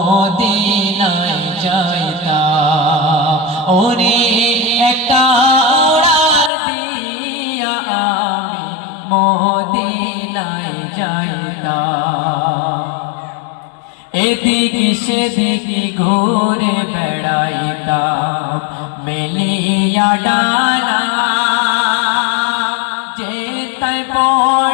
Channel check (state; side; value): drops out; right; at 6.5 s